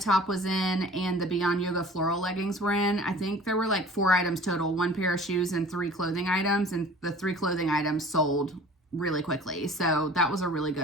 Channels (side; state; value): both; normal; correlation 0.46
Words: was in, and the Beyond Yoga floral leggings were in. I think there were like 4 items total, 1 pair of shoes and 3 clothing items, and the 3 clothing items sold really quickly. So that was a really